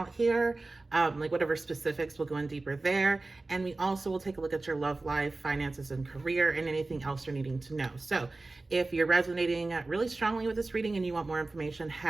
here, like whatever specifics, we'll go in deeper there. And we also will take a look at your love life, finances, and career, and anything else you're needing to know. So if you're resonating really strongly with this reading and you want more information,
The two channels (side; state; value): left; quieter; 3.2 dB